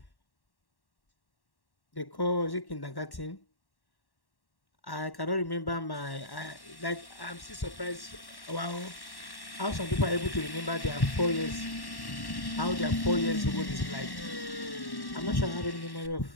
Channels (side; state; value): right; late; 1.1 ms